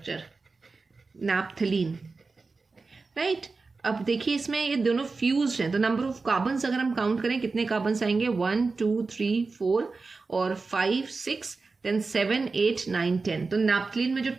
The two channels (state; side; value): quieter; left; 4.1 dB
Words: नैप्थलीन, राइट। अब देखिए इसमें ये दोनों फ्यूज्ड हैं तो नंबर ऑफ कार्बन्स अगर हम काउंट करें कितने कार्बन्स आएंगे, 1 2 3 4 और 5 6 देन 7 8 9 10। तो नैप्थलीन में जो